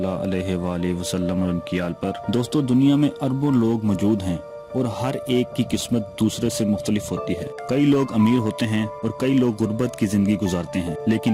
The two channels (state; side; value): identical; both; correlation 1.00